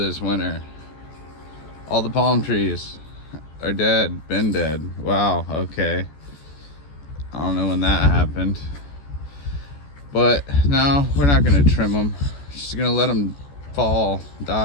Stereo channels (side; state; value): right; late; 14 ms